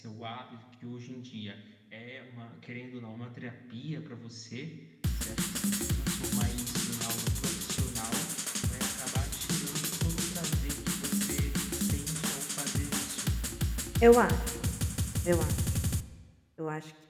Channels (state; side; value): identical; both; correlation 1.00